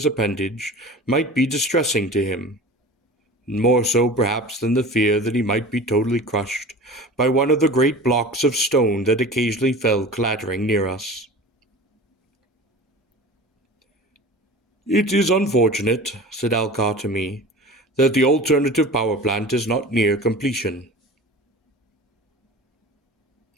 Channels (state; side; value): normal; both; correlation 0.37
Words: appendage, might be distressing to him, more so perhaps than the fear that he might be totally crushed by one of the great blocks of stone that occasionally fell clattering near us. It is unfortunate, said Alcar to me, that the alternative power plant is not near completion.